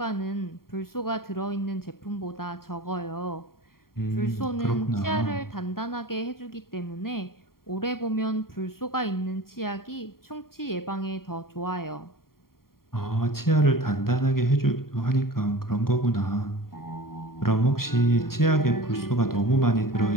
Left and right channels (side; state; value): right; late; 0.93 ms